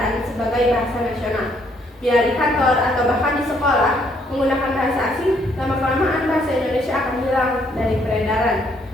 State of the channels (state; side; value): normal; both; correlation 0.68